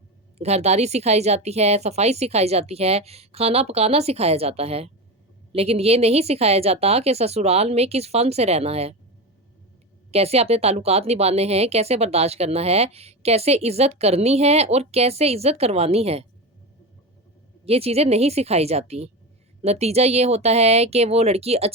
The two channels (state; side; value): normal; both; correlation 0.21